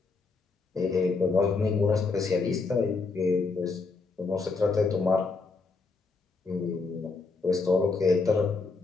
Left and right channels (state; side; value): quieter; right; 4.2 dB